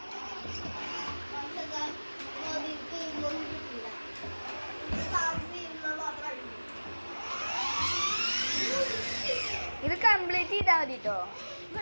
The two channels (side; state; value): both; inverted; correlation -1.00